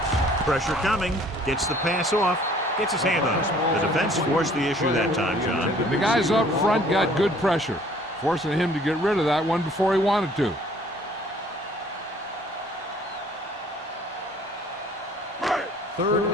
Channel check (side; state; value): both; normal; correlation 0.56